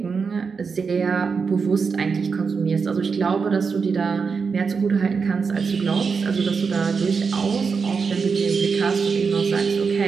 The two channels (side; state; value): left; quieter; 5.4 dB